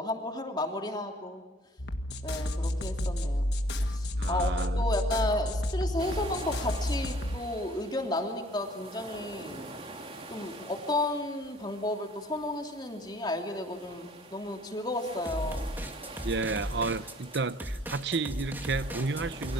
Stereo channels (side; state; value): both; normal; correlation 0.55